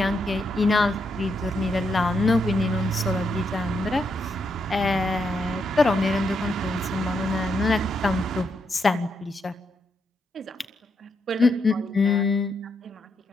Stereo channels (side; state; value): both; normal; correlation 0.80